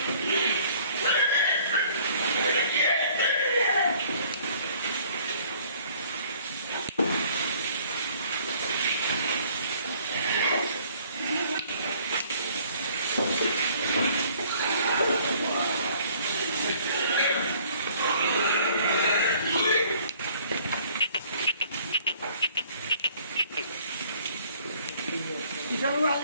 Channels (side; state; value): both; inverted; correlation -0.57